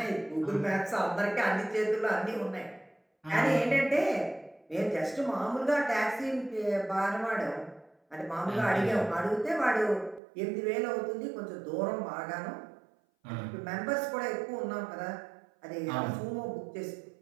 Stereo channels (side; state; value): left; drops out; at 10.2 s